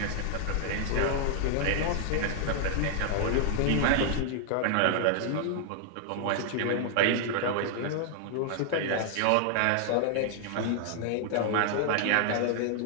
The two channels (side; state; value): both; different; correlation 0.00